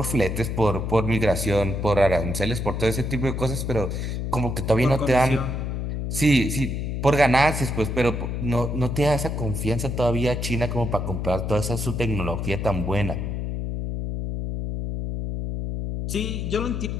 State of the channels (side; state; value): left; noise; hum, 3 dB below the sound